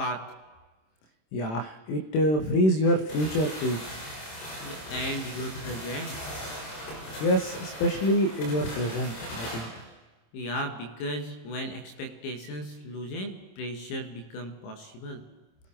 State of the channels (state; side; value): late; right; 26 ms